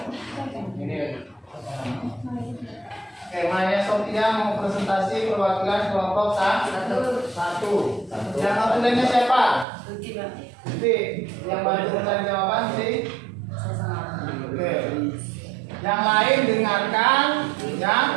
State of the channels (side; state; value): left; drops out; at 9.7 s